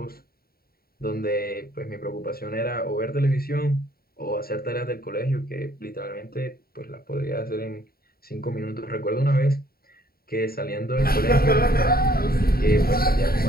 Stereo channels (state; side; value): late; right; 0.44 ms